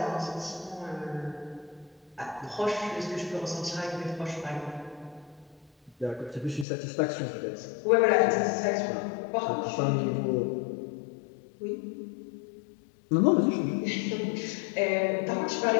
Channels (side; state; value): right; drops out; at 6.7 s